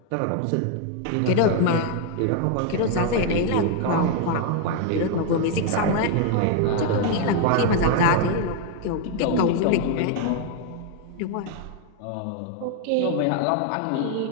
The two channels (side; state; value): both; different; correlation 0.01